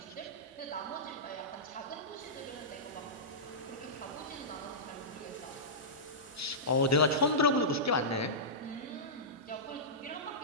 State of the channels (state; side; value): normal; both; correlation -0.17